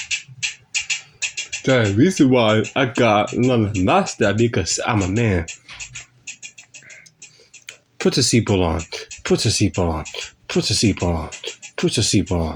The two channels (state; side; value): identical; both; correlation 1.00